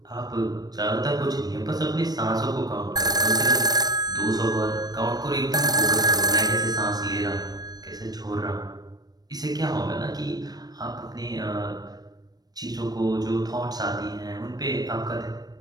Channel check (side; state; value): left; late; 0.19 ms